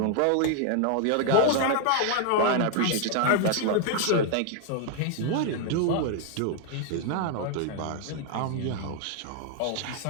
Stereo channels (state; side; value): different; both; correlation 0.00